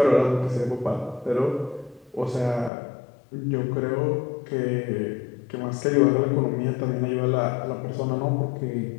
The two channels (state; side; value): drops out; right; at 2.7 s